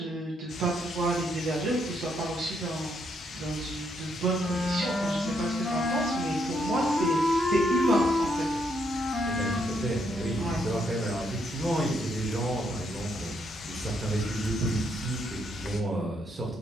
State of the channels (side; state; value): both; normal; correlation 0.75